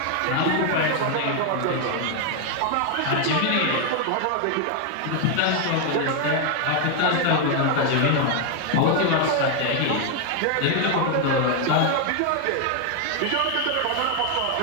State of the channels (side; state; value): both; different; correlation 0.01